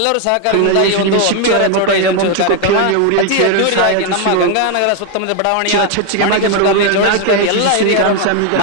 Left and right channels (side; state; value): both; different; correlation 0.01